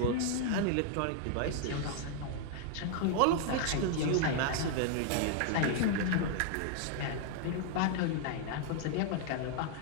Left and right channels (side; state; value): both; different; correlation 0.00